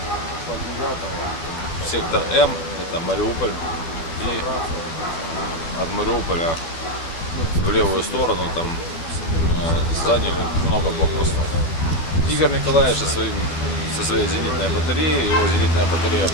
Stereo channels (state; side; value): late; right; 12 ms